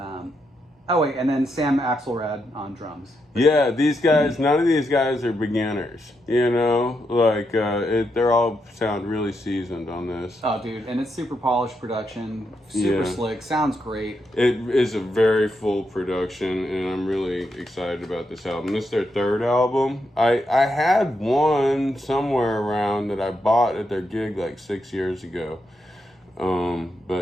And then Sam Axelrad on drums. Yeah, these guys, none of these guys are beginners, you know? Like, they're all sound really seasoned on this. Oh, dude, and it's super polished production, super slick, sounds great. It is a very full production, and I'm really excited about this album. This is their 3rd album. I had one somewhere around that I bought at their gig like 6 years ago.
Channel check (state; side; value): normal; both; correlation 0.82